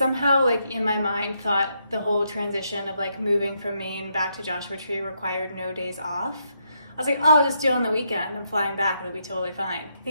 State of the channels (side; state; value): both; inverted; correlation -0.77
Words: like, in my mind thought the whole transition of like moving from Maine back to Joshua Tree required no days off. I was like, oh, I'll just do it on the weekend. I'm flying back, it'll be totally fine. I